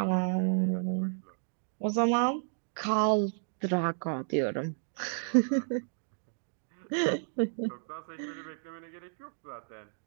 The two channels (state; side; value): silent; left; digital silence